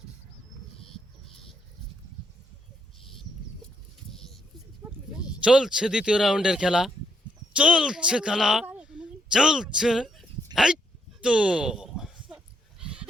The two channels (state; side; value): normal; both; correlation 0.76